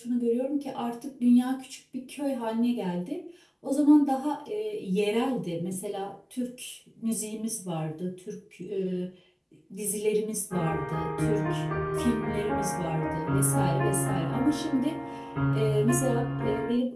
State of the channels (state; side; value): identical; both; correlation 1.00